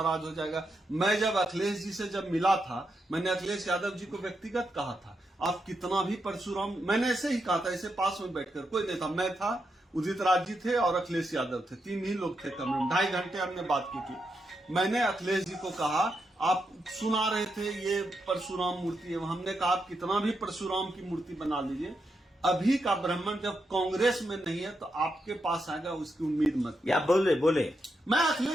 हो जाएगा। मैं जब अखिलेश जी से जब मिला था, मैंने अखिलेश यादव जी को व्यक्तिगत कहा था, आप कितना भी परशुराम, मैंने ऐसे ही कहा था, ऐसे पास में बैठकर, कोई नहीं था, मैं था, उदित राज जी थे और अखिलेश यादव थे, 3 ही लोग थे कमरे में। 2.5 घंटे हमने बात की थी। मैंने अखिलेश जी को कहा, आप सुना रहे थे ये परशुराम मूर्ति है, हमने कहा आप कितना भी परशुराम की मूर्ति बना लीजिए, अभी का ब्राह्मण जब कांग्रेस में नहीं है तो आपके पास आएगा, उसकी उम्मीद मत। या बोले मैं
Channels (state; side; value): normal; both; correlation 0.84